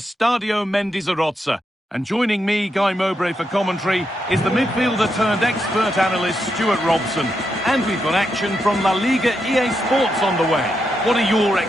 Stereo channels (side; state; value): both; normal; correlation 0.83